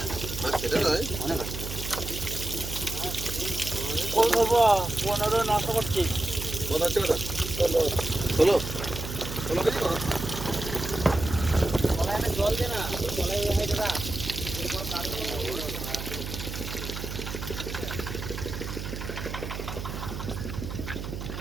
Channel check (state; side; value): noise; right; hum, 6 dB below the sound